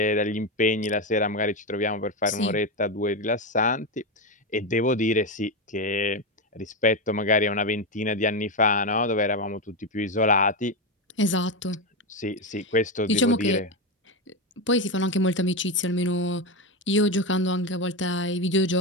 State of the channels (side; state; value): both; normal; correlation 0.12